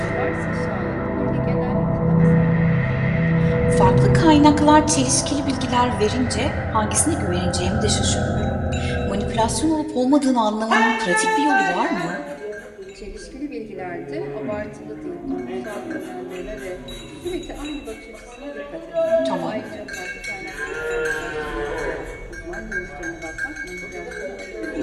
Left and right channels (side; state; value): both; identical; correlation 1.00